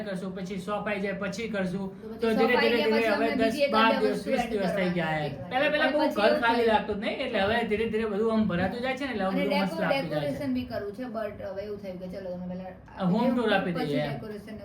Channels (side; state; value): both; identical; correlation 1.00